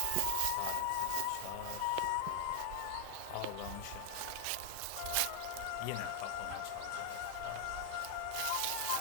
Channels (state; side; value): different; both; correlation 0.00